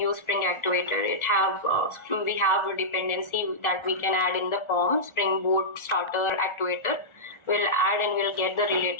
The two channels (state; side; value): late; right; 1.4 ms